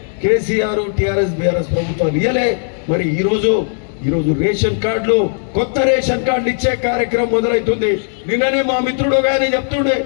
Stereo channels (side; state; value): right; silent; digital silence